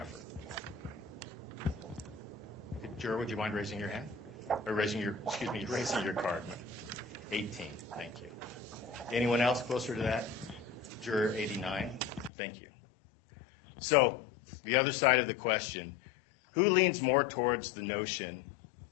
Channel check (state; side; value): drops out; right; at 12.3 s